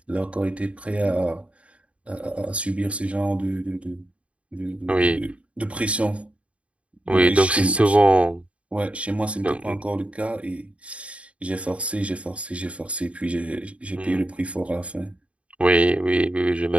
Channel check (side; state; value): left; late; 0.063 ms